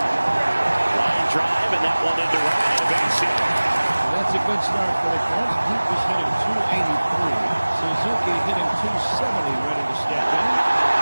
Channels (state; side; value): inverted; both; correlation -1.00